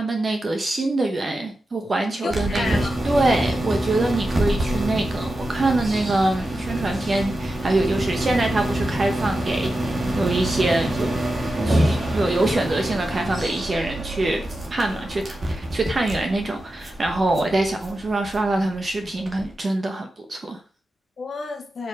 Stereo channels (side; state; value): both; normal; correlation 0.91